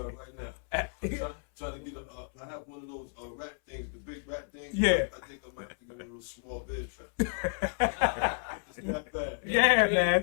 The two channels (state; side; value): silent; right; 56 dB below the other